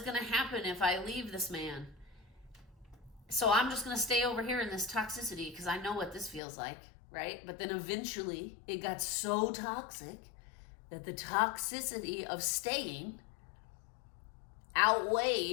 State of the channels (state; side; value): drops out; right; at 6.4 s